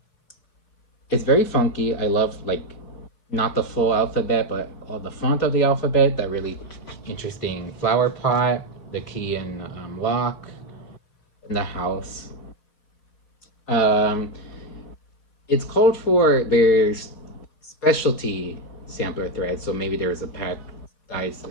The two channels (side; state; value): right; late; 4.1 ms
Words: It's very funky. I love like not the full alphabet, but all the font of the alphabet. That really interesting flower pot, the key and lock in the house. It's called for there's specialty sampler thread, so maybe there's a pack guides